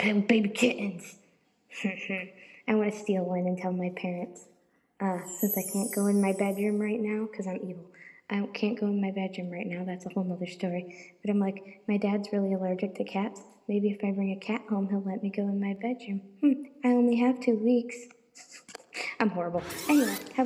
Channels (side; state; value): both; identical; correlation 1.00